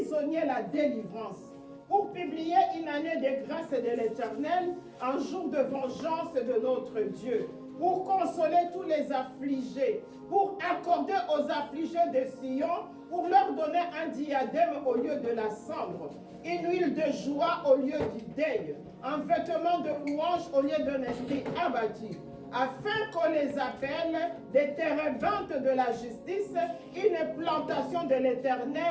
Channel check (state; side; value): identical; both; correlation 1.00